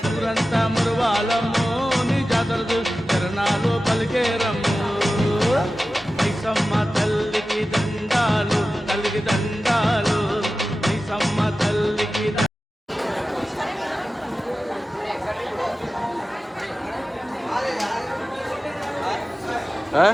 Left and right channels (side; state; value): both; normal; correlation 0.95